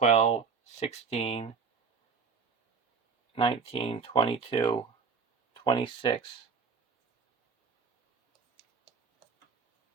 16, 19, 22, 26.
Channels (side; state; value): left; quieter; 5.4 dB